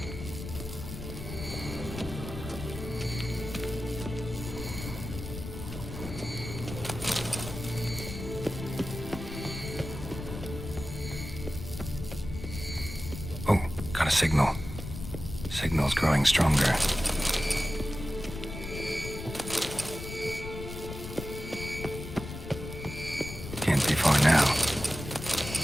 Oh, got a signal. Signal's growing stronger. Can't be far now.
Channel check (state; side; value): noise; left; rumble, 9 dB below the sound